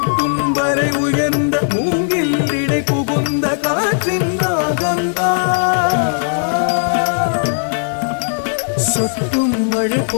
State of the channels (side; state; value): right; silent; 59 dB below the other